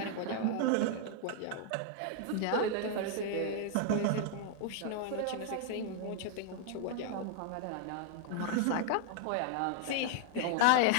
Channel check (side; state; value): both; different; correlation 0.00